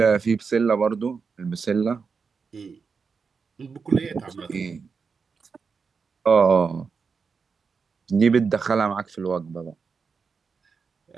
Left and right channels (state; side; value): quieter; left; 5.3 dB